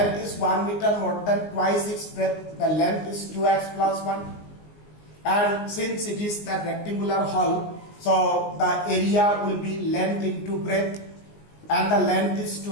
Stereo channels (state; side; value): late; right; 19 ms